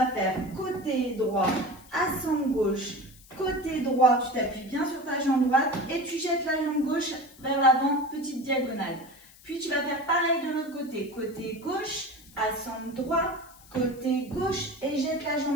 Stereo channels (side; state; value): left; noise; hiss, 23 dB below the sound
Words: faire côté droit, assemble gauche. Côté droit, tu t'appuies bien sur ta jambe droite et tu jettes la jambe gauche vers l'avant, petite diagonale. Puis tu vas faire pareil de l'autre côté. Côté gauche, assemble droit, côté gauche et jette la